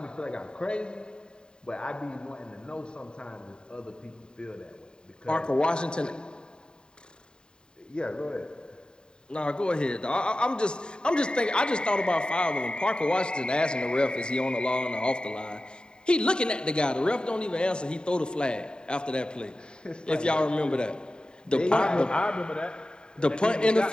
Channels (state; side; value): late; right; 0.048 ms